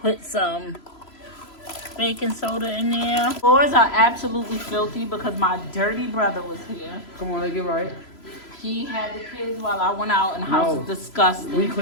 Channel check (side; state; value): right; late; 3.0 ms